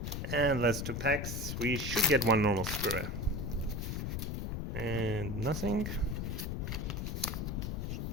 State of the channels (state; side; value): noise; left; rumble, 2 dB below the sound